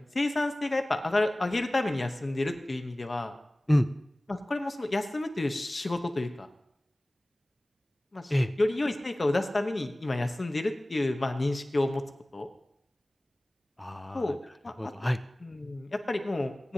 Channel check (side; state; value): both; normal; correlation 0.98